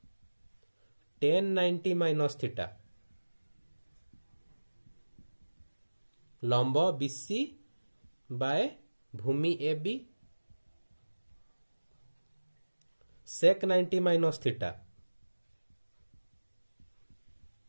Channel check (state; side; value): inverted; both; correlation -1.00